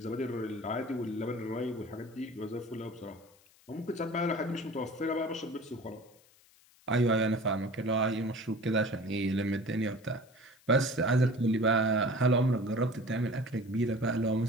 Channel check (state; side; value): noise; left; hiss, 29 dB below the sound